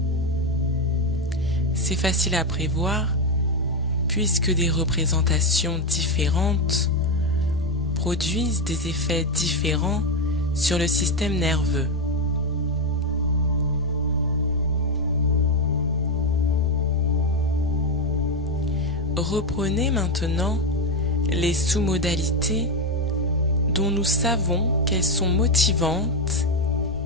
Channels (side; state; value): both; normal; correlation 0.08